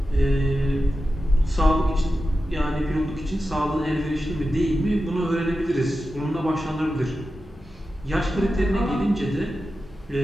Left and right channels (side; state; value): both; normal; correlation 0.92